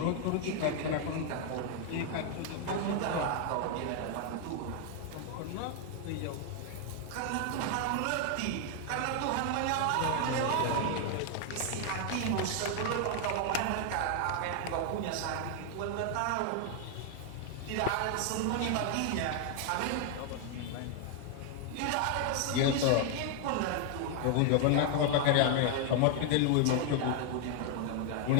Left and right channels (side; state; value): both; different; correlation 0.00